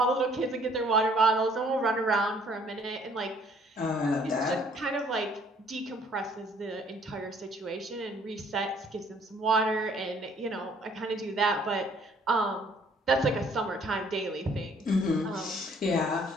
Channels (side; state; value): both; normal; correlation 0.60